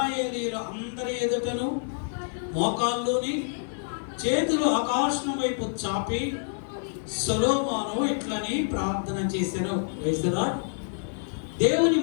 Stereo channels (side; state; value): right; silent; digital silence